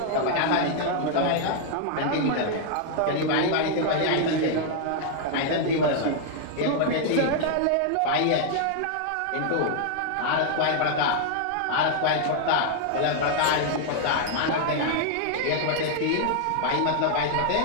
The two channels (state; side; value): different; both; correlation 0.00